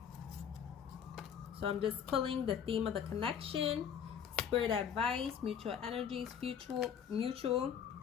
So I'm just pulling the theme of the connection, spirit advice, mutual energies, mutual.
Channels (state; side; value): quieter; right; 8.1 dB